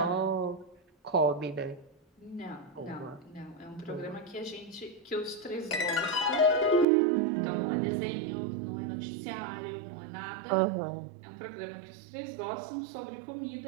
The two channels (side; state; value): left; drops out; at 6.9 s